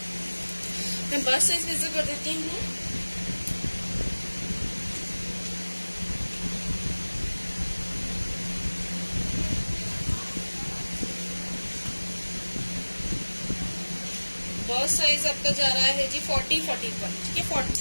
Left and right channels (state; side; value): inverted; both; correlation -1.00